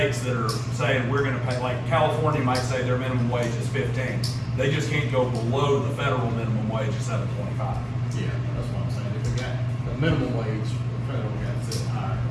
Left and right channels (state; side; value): identical; both; correlation 1.00